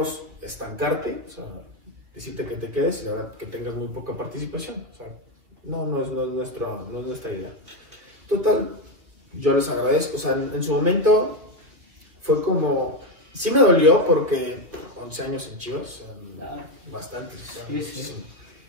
estancarte, o sea, decirte que te quedes y la verdad que tengas muy poca participación. O sea, no es nuestra idea. Total, yo les agradezco. O sea, en su momento fue como, sí me dolió porque 11 años en Chivas, o sea, bastantes. O sea, sí.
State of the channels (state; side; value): late; left; 2.2 ms